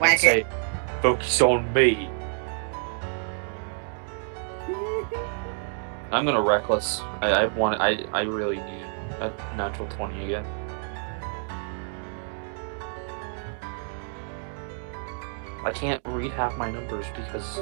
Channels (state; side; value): silent; left; 55 dB below the other